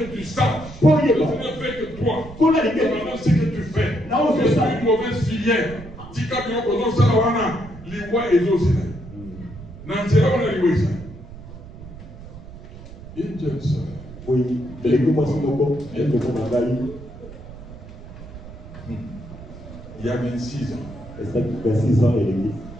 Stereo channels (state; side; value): noise; right; rumble, 15 dB below the sound